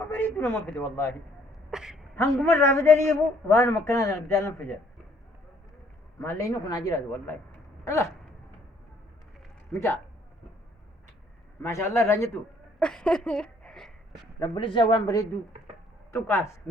بريد ولا ما فدي والله هم مرة فدني يبو وأنا مكنا أنا بدال نفجر ما لينو كنا جيراد والله الله متى ما شاء الله رانيتو رب العزة وان بريدو تقاس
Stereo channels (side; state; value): both; normal; correlation 0.63